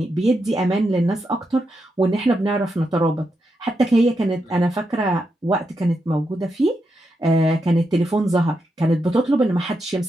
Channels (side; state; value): both; normal; correlation 0.84